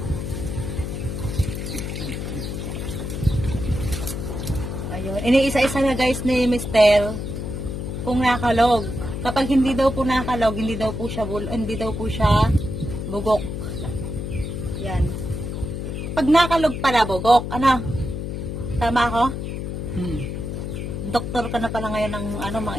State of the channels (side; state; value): left; noise; hum, 5 dB below the sound